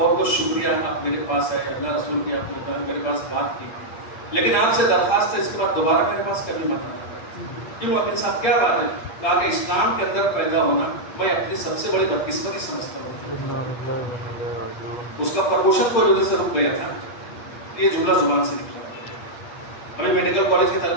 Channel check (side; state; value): right; late; 8.7 ms